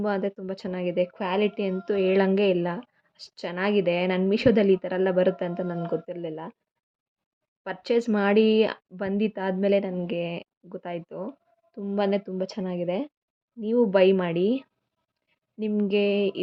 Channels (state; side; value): identical; both; correlation 1.00